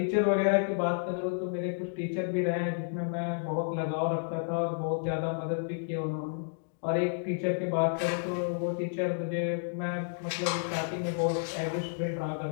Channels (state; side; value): silent; right; digital silence